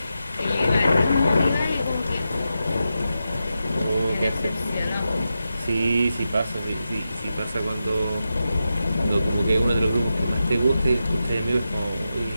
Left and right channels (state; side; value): inverted; both; correlation -0.89